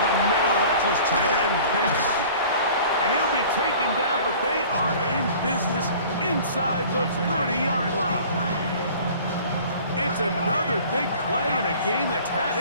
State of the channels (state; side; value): inverted; both; correlation -0.46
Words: the middle, that's his tight end, Pitts. And he'll be taken down, but they are in business inside the 30-yard line. It's another big play in a game that's had